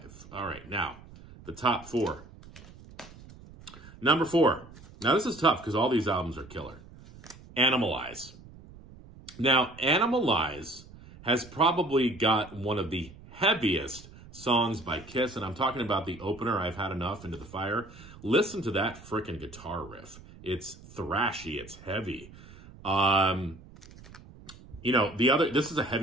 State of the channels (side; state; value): right; noise; rumble, 20 dB below the sound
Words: All right, now, the top 4. Number 4. Now, this is tough because all these albums are killer. Animalize. Now, Animalize has probably got one of the heaviest songs by Kiss, and I'm talking about the opener, I've Had Enough, Into the Fire. Listen to that frickin' guitar riff. It's thrashy, it's heavy. You know, this is a